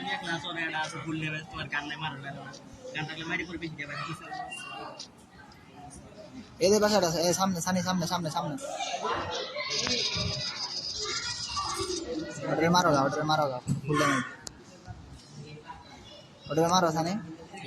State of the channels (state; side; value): identical; both; correlation 1.00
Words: এদের বাসাটা আছে, সামনে সানি, সামনে সামনে সামনে, ওটারে মারো গা, ওটারে মারো গা, ফুল ড্যামেজ, ওটারে মারো সানি।